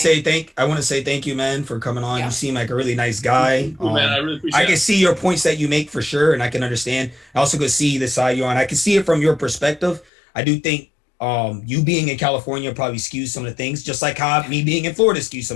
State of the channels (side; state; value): right; drops out; at 10.1 s